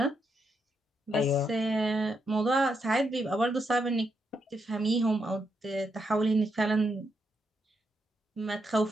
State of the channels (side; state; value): both; normal; correlation 0.81